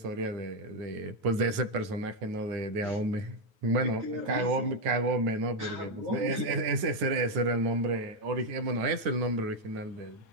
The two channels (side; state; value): left; late; 9.3 ms